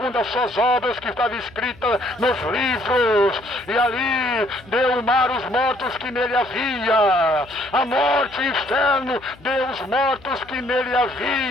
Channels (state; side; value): noise; left; hum, 24 dB below the sound